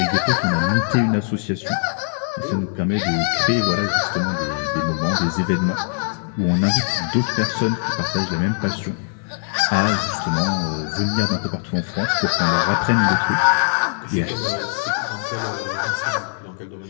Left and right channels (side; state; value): right; silent; digital silence